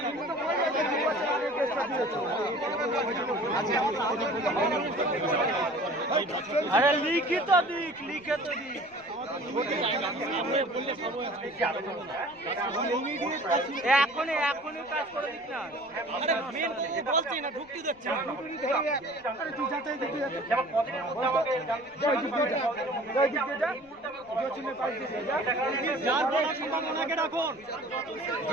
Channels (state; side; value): noise; left; rumble, 29 dB below the sound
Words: আরে লিখিত দিক, লিখিত দিক। এখনই কাজ করে দিক না। বলছি না, ঢুকতে দিচ্ছে না। যার বলার সম্ভাবনাকে রাখুন,